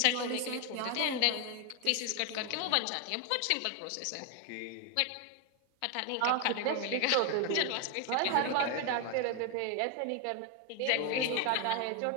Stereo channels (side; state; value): both; different; correlation 0.01